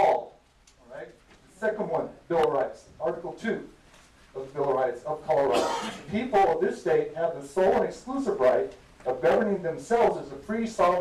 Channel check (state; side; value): identical; both; correlation 1.00